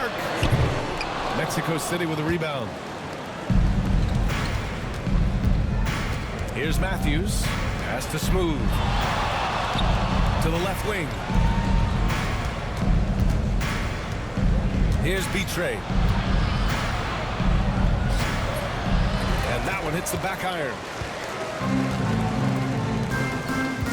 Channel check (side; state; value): both; identical; correlation 1.00